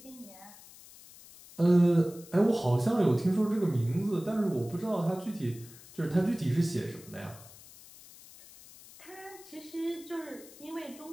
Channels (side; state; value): left; noise; hiss, 20 dB below the sound